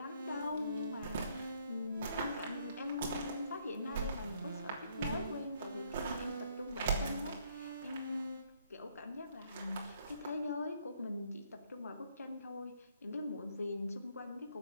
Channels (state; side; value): inverted; both; correlation -0.68